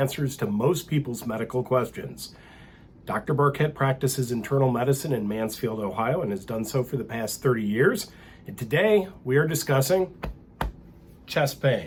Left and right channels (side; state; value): both; identical; correlation 1.00